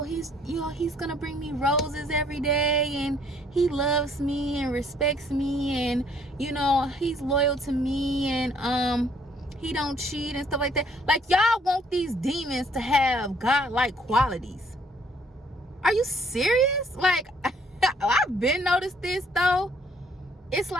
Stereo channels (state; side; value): normal; both; correlation 0.63